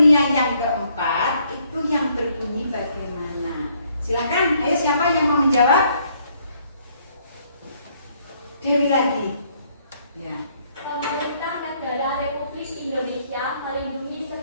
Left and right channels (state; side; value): inverted; both; correlation -0.68